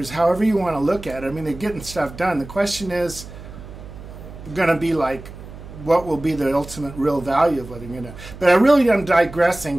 However you want to look at it. I mean, they're getting stuff done. The question is going to be like, what will be the ultimate real value of whether you're going to... But I really am digressing,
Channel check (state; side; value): noise; right; hum, 15 dB below the sound